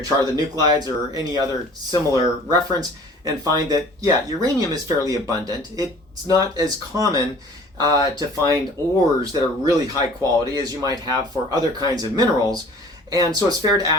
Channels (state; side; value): normal; both; correlation 0.48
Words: chart of the nuclides or any other similar reference and find that, yeah, uranium is fairly abundant. It's not as common to find ores that are really high quality as you might have for other kinds of minerals. And so it's fair to